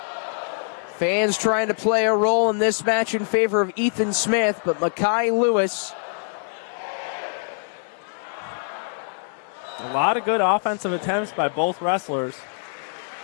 Fans trying to play a role in this match in favor of Ethan Smith, but Mekkhi Lewis. A lot of good offensive attempts by both wrestlers.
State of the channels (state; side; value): silent; right; 63 dB below the other